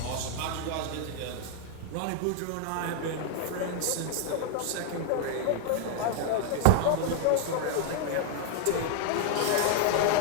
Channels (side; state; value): both; different; correlation 0.00